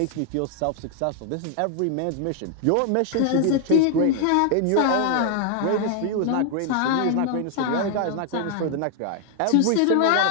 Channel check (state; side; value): different; both; correlation 0.00